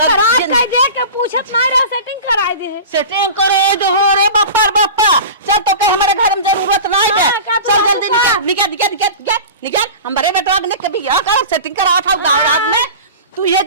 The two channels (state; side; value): inverted; both; correlation -0.34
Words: खराब कर दे के पूछत ना रहा, सेटिंग कराई दे। सेटिंग करे दो रे बापा बापा। चल तो के हमारे घर में जरूरत नहीं है, चल जल्दी निकल निकल निकल निकल निकल। हमारे बेटवा ने कभी बियाह कर सेटिंग करा था गाँव में, तू ये